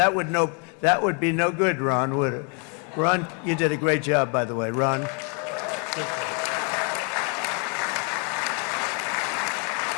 would be no good, Ron, would it? Ron, you did a great job, by the way, Ron.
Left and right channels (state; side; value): quieter; right; 36.1 dB